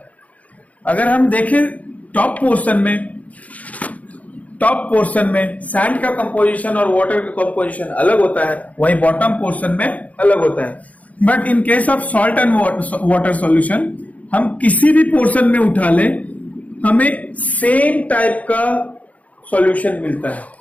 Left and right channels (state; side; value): late; right; 0.070 ms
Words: अगर हम देखें टॉप पोर्शन में सैंड का कंपोजिशन और वाटर का कंपोजिशन अलग होता है, वहीं बॉटम पोर्शन में अलग होता है। But in case of salt and water solution, हम किसी भी पोर्शन में उठा लें, हमें सेम टाइप का सॉल्यूशन मिलता है।